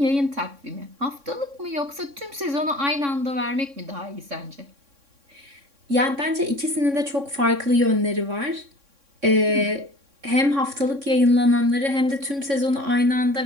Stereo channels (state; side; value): late; left; 3.6 ms